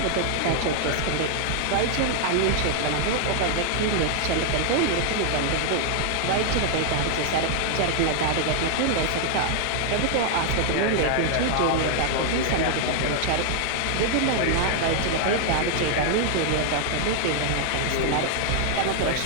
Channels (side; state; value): both; different; correlation 0.00